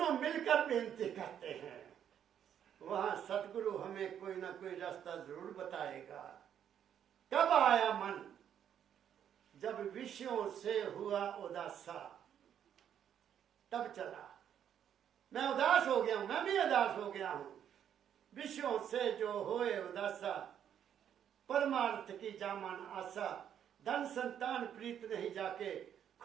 मिलकर बेनती करते हैं, वहां सतगुरु हमें कोई ना कोई रास्ता जरूर बताएगा। कब आया मन? जब विषयों से हुआ उदासा, तब चला। मैं उदास हो गया हूं, मैं भी उदास हो गया हूं। विषयों से जो होए उदासा, परमार्थ की जामन आशा। धन संतान प्रीत नहीं जाके,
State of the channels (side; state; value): left; quieter; 9.3 dB